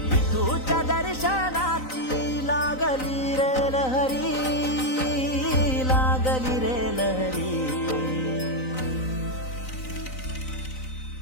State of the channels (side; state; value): right; late; 3.9 ms